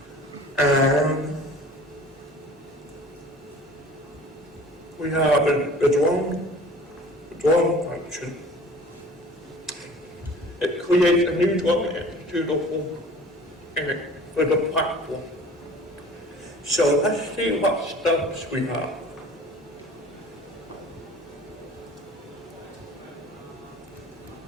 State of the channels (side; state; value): both; normal; correlation 0.45